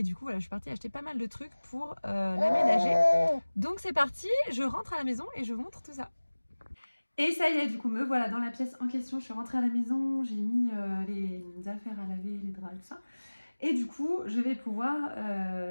du coup, voilà, je suis partie acheter pas mal de trucs pour l'aménager. Donc c'est parti, je rentre à la maison et je vous montre tout ça. Et ça y est, du coup, me voilà dans la pièce en question. Je suis rentrée à la maison, j'ai mis les affaires à laver, les draps et tout ça. Et du coup, je vais pouvoir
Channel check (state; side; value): inverted; both; correlation -1.00